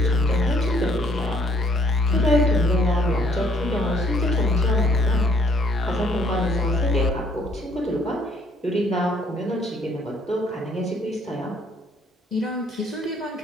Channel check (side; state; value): both; normal; correlation 0.63